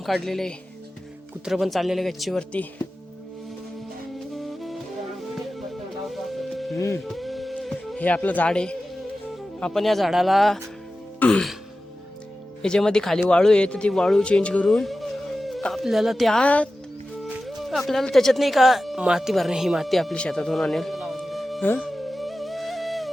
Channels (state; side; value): normal; both; correlation 0.94